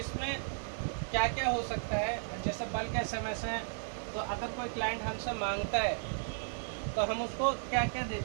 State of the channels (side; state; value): left; silent; digital silence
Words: क्या क्या हो सकता है? जैसे बल्क एसएमएस है, तो अगर कोई क्लाइंट हमसे मांगता है तो हम उसको क्या क्या